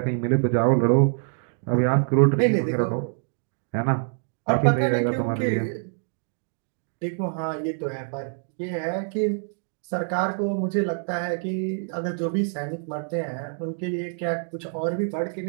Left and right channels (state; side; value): silent; left; 58 dB below the other